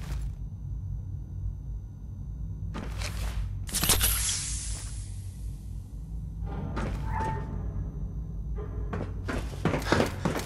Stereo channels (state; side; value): identical; both; correlation 1.00